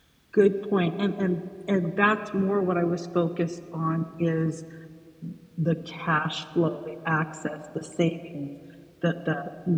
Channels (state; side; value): identical; both; correlation 1.00